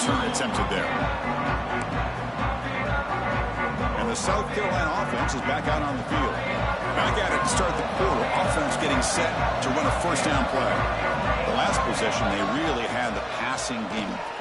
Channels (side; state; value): both; identical; correlation 1.00